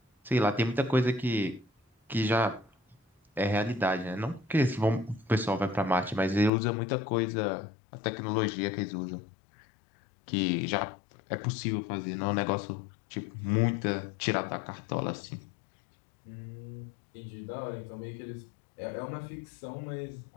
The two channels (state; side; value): drops out; right; at 6.5 s